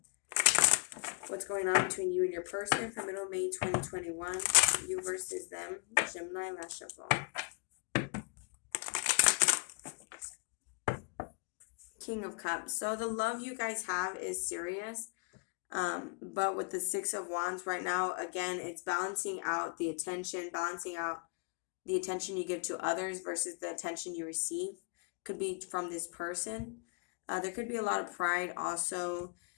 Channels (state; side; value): quieter; right; 36.8 dB